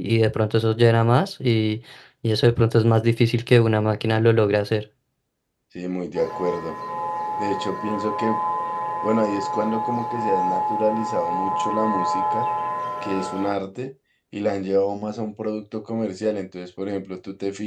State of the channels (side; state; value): both; identical; correlation 1.00